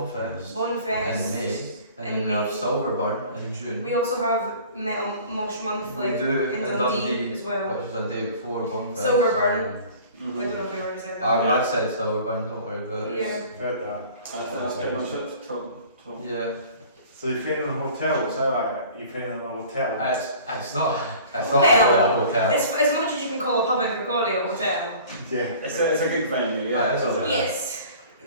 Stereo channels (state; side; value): inverted; both; correlation -0.46